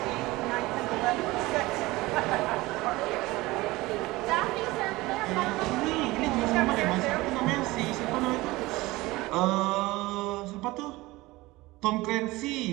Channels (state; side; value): quieter; left; 20.2 dB